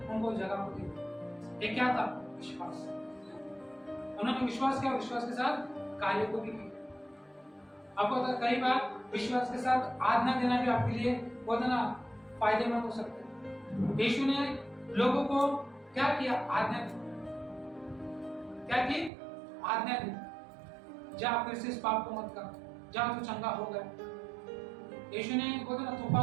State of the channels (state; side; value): drops out; left; at 19.1 s